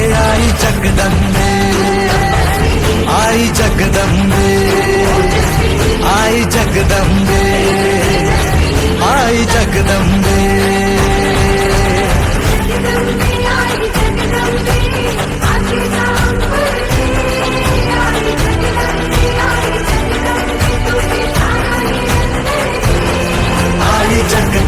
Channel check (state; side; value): identical; both; correlation 1.00